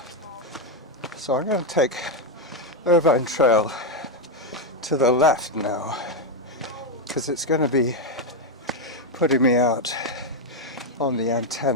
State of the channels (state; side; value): normal; both; correlation 0.03